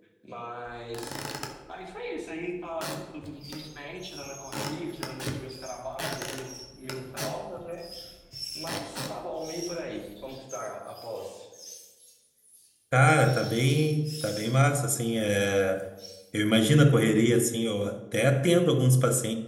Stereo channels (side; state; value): both; identical; correlation 1.00